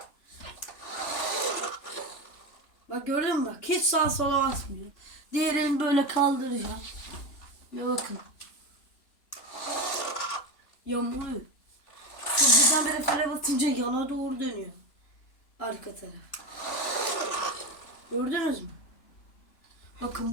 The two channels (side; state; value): right; late; 3.4 ms